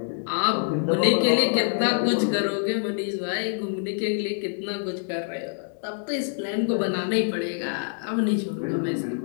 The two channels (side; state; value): right; silent; digital silence